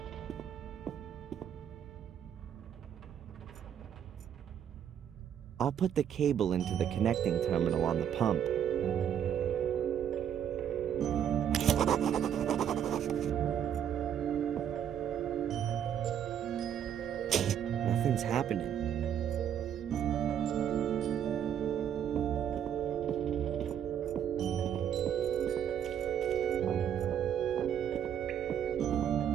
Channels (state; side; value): quieter; left; 9.2 dB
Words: I'll put the cable into the connecting terminal on the pump. Nothing's happening.